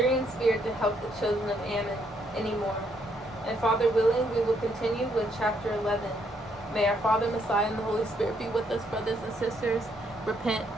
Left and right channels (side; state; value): both; normal; correlation 0.72